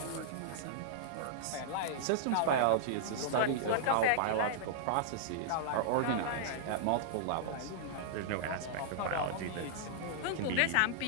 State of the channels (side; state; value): both; different; correlation -0.02